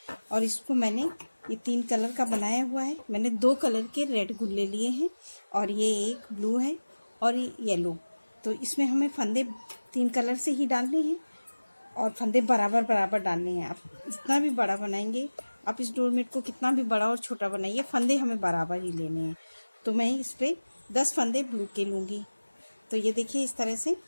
और इसको मैंने ये 3 कलर का बनाया हुआ है। मैंने 2 कलर के रेड गुल्ले लिए हैं और ये एक ब्लू है और ये येलो। तो इसमें हमें फंदे 3 कलर से ही डालने हैं और फंदे बराबर बराबर डालने हैं। आप जितना भी बड़ा बनाएंगे, आप इस डोरमेट को कितना भी बड़ा और छोटा बनाइए, फंदे हमें बराबर ही लेने हैं। तो मैं इस पर 10 फंदे ब्लू के लूँगी। तो ये देखिए इस तरह से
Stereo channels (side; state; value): both; inverted; correlation -1.00